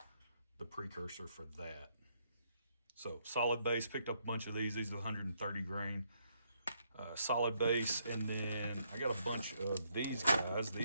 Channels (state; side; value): inverted; both; correlation -0.74